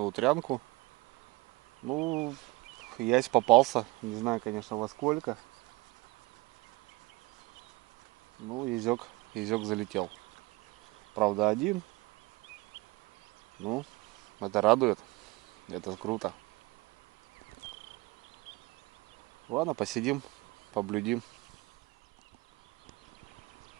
утрянку. Ну, ясь попался. Не знаю, конечно, во сколько. Ну, езек залетел. Правда, один. Ну, это радует. Это круто. Ладно, посидим, поблюдим.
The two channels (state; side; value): quieter; left; 23.5 dB